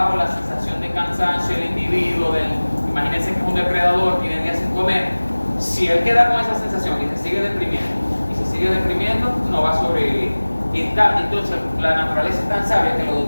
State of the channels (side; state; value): both; inverted; correlation -1.00